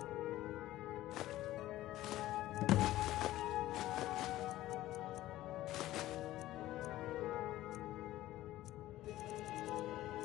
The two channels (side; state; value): right; quieter; 15.2 dB